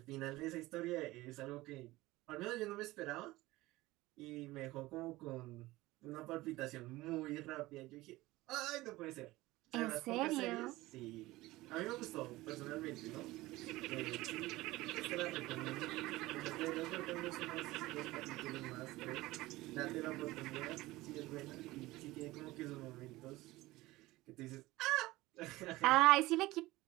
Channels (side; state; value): left; quieter; 18.8 dB